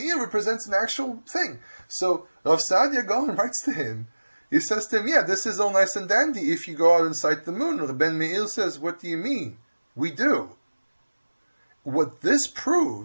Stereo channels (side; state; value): both; inverted; correlation -1.00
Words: represents an actual thing. So Rav Saadia Gaon writes to him, he says to him, yeah, this is all nice and dandy if you go out and sight the moon. And Ben Meir says, what do you mean? We do. What this